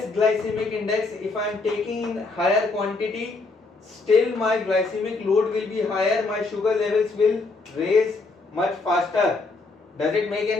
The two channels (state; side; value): quieter; right; 3.7 dB